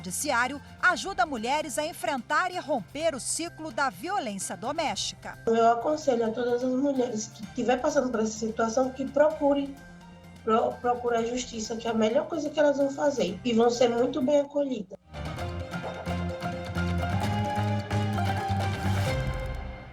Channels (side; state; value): both; identical; correlation 1.00